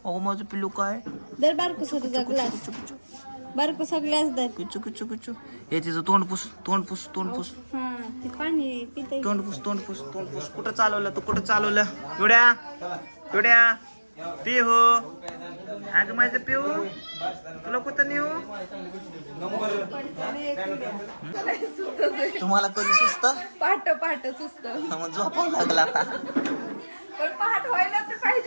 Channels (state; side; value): inverted; both; correlation -1.00